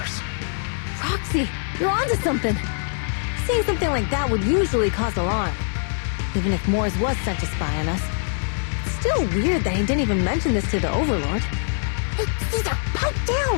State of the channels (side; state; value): right; silent; digital silence